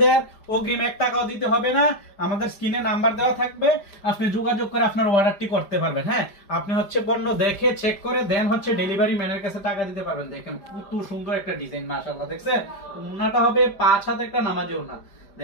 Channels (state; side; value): late; right; 5.0 ms